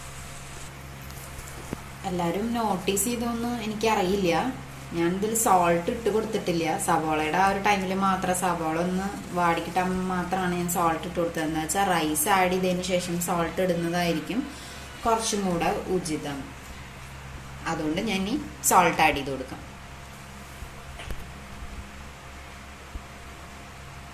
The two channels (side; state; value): both; identical; correlation 1.00